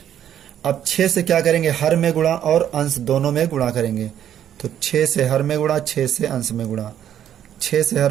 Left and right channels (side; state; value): left; quieter; 10.3 dB